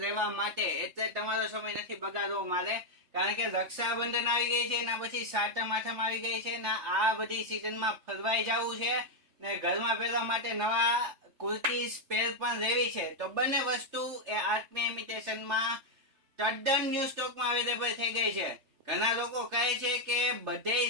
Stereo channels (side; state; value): left; late; 3.3 ms